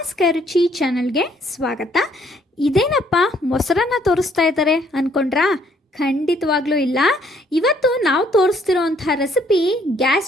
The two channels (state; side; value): normal; both; correlation 0.65